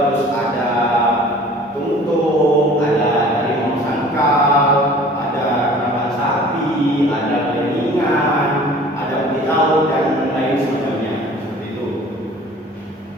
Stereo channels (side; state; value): both; normal; correlation 0.47